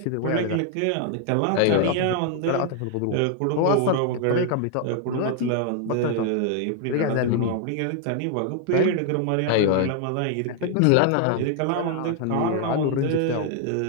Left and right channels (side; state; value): both; different; correlation 0.00